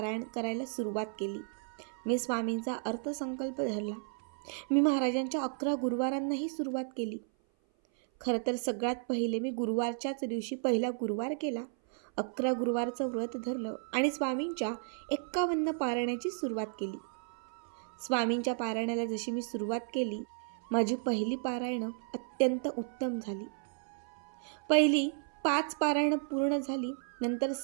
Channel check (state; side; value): silent; left; 55 dB below the other